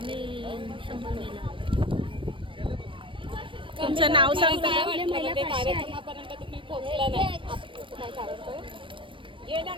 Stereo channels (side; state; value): left; late; 0.25 ms